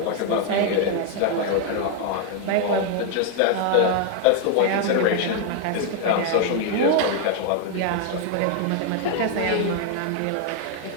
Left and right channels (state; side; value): different; both; correlation 0.00